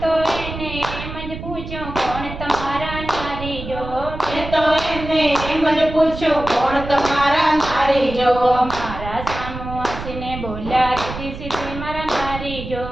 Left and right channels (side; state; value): right; noise; rumble, 9 dB below the sound